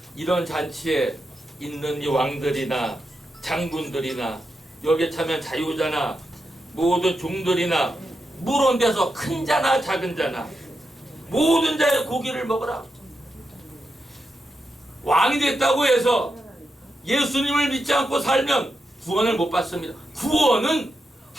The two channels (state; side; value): normal; both; correlation 0.86